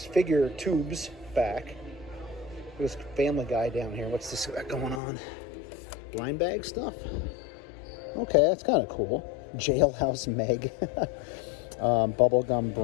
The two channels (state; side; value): drops out; right; at 5.0 s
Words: figure tubes back. There's Family Guy down here. What's this got going on? Blind bag stuff? Okay, that's kind of cool. Jailhouse Meg. Bubblegum